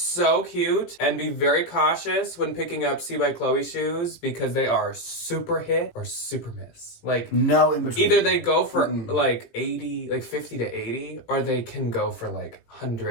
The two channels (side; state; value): right; late; 18 ms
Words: cute. And be very cautious when picking up C by Chloe shoes because they are super hit or super miss. Like, no in between. either they go for like 80, like 50 to 80, or they can go for like